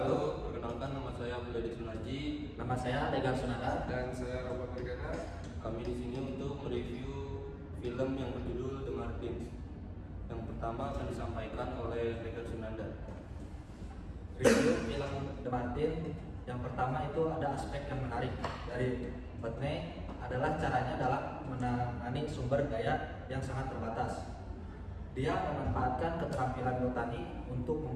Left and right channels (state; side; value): identical; both; correlation 1.00